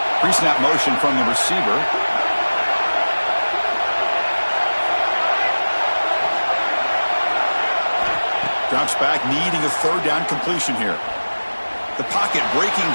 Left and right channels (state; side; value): inverted; both; correlation -1.00